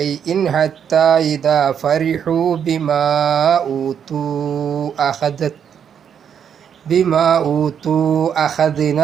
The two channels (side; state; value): left; quieter; 8.1 dB